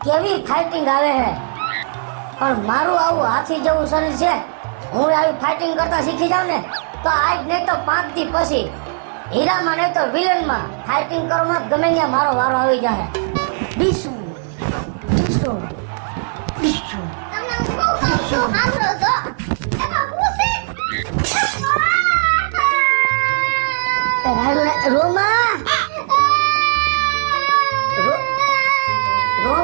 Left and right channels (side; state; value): left; silent; 59 dB below the other